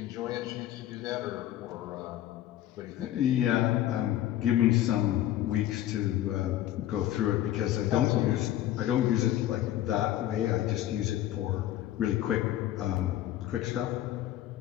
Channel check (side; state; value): right; quieter; 13.2 dB